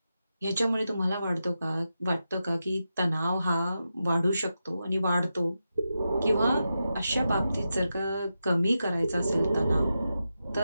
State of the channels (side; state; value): both; inverted; correlation -0.89